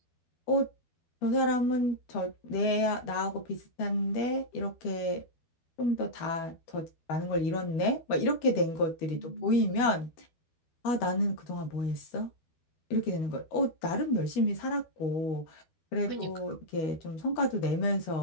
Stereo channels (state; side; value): late; right; 12 ms